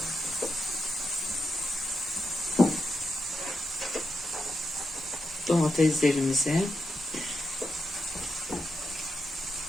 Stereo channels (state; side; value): normal; both; correlation 0.85